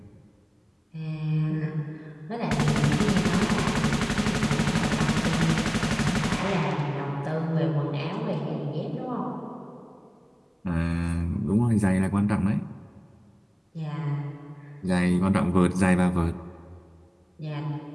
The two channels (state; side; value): identical; both; correlation 1.00